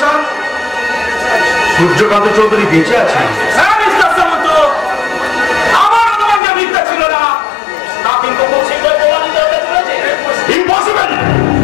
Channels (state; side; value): drops out; right; at 6.4 s